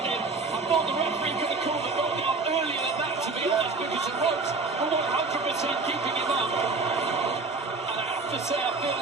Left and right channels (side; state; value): left; quieter; 3.9 dB